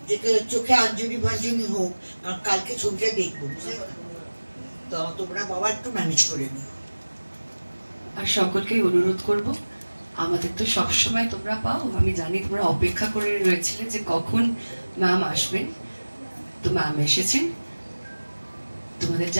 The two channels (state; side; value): inverted; both; correlation -1.00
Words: যে চোখে আঞ্জলি ভাঞ্জনি হোক, কারণ কালকে ছবিটা দেখবো, তো তোমরা বাবা একটু ম্যানেজ করে নিও। আর সকলকে অনুরোধ করব, আমাদের তো সবসময় তোমরা পাও, আমি জানি তোমরা অপেক্ষা করে রয়েছিলে যে কখন ম্যাম আসবেন, তো ম্যাম এসেছেন। তোমাদের